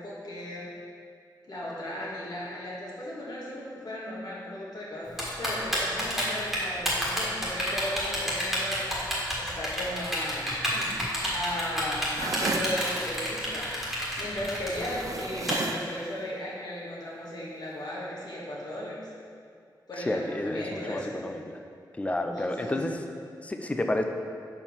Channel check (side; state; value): both; normal; correlation 0.49